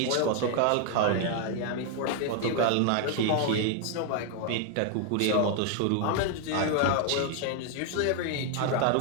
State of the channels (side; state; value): both; different; correlation 0.00